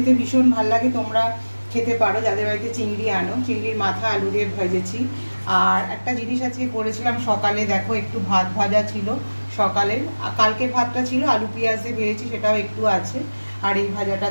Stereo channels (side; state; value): both; inverted; correlation -1.00